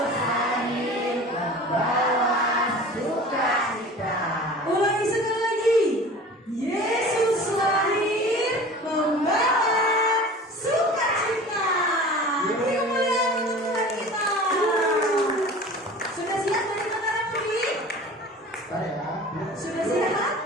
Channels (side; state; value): both; normal; correlation 0.40